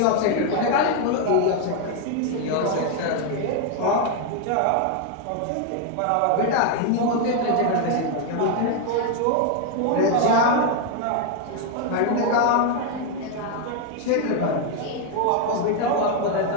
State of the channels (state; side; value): different; both; correlation 0.01